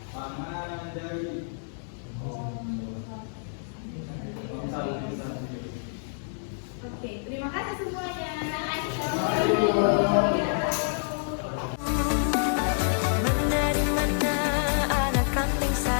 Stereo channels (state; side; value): silent; right; digital silence